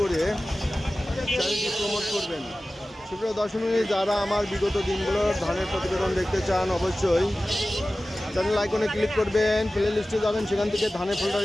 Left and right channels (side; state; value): both; normal; correlation 0.96